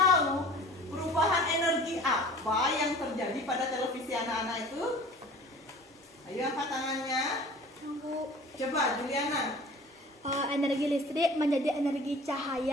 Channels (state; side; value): normal; both; correlation 0.44